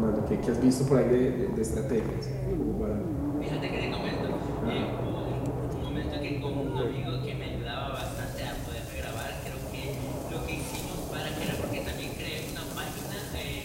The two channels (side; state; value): both; identical; correlation 1.00